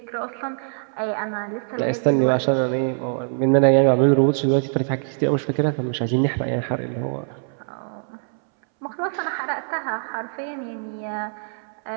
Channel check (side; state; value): left; silent; 63 dB below the other